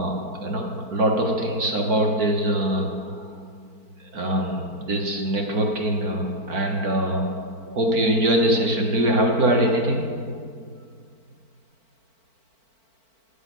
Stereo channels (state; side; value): late; left; 4.5 ms